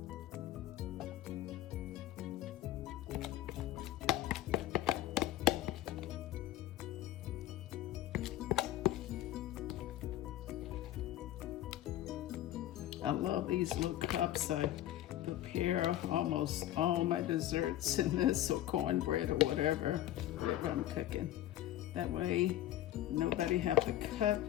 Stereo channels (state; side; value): quieter; right; 13.5 dB